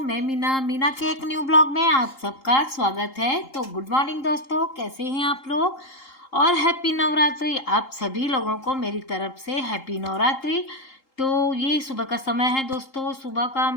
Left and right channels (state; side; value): late; right; 3.8 ms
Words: मीना के एक न्यू ब्लॉग में आप सबका स्वागत है। तो गुड मॉर्निंग दोस्तों, कैसे हैं आप लोग और हैप्पी नवरात्रि। आप सभी लोगों को मेरी तरफ से हैप्पी नवरात्रि। तो ये सुबह का समय है दोस्तों, सुबह का